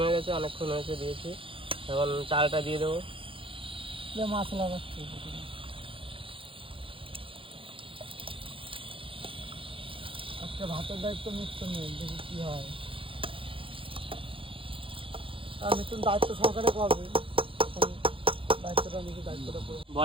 হয়ে গেছে, অনেকক্ষণ হয়েছে দিয়েছি। এখন চালটা দিয়ে দেবো। মাছ লাগাচ্ছি, আজকে ভাতের দায়িত্ব মিথুন নেই, দেখি কি হয়। আর মিথুন দায়িত্ব সহকারে করবে, দায়িত্বটা নিজে দায়িত্বটা করে।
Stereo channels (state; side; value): late; left; 0.26 ms